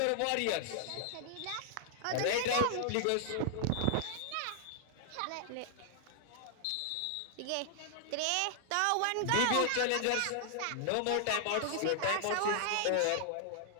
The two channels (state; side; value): different; both; correlation -0.01